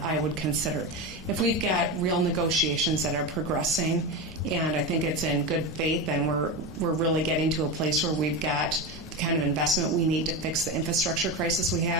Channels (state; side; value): normal; both; correlation 0.18